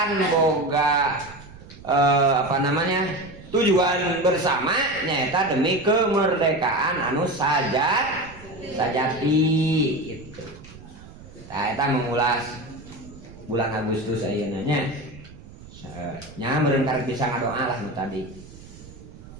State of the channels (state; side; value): noise; right; rumble, 18 dB below the sound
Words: boga tujuan bersama nyata demi kemerdekaan anu sajati gitu. Nah, kita mengulas bulan Agustus ayeuna nya. Nya meureun karek bisa ngadoa lah nu tadi.